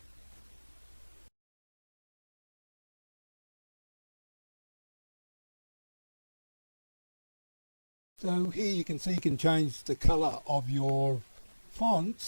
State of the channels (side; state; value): both; inverted; correlation -1.00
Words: So here you can see you can change the colour of your